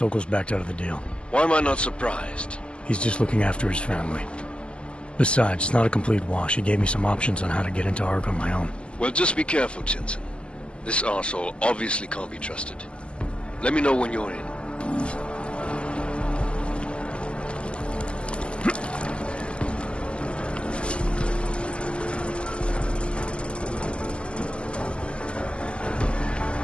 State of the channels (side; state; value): right; late; 0.052 ms